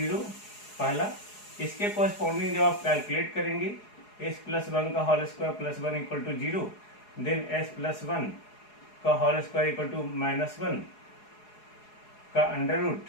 पहला, इसके कोरिस्पॉन्डिंग जब आप कैलकुलेट करेंगे एस प्लस वन का whole square plus one equal to zero, then S plus one का whole square equal to minus one का under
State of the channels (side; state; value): right; late; 4.8 ms